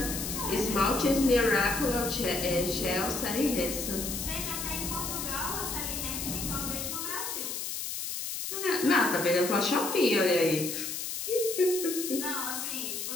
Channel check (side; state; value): left; noise; hiss, 4 dB below the sound